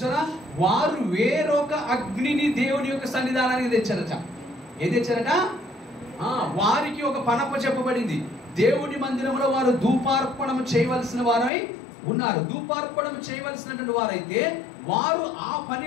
వారు వేరొక అగ్నిని దేవుని యొక్క సన్నిధానానికి తెచ్చారట. ఏం తెచ్చారట, వారికి ఒక పనప చెప్పబడింది. దేవుని మందిరంలో వారు ధూపార్పణము చేయవలసిన వారై ఉన్నారు. ధూపార్పణం చేయవలసినటువంటి వారైతే వారు ఆ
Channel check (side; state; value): right; drops out; at 11.5 s